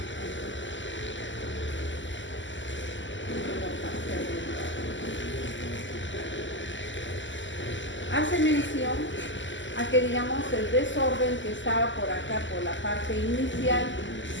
Hace mención a que, digamos, el desorden que estaba por acá, por la parte inicial,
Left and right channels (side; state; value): right; late; 0.54 ms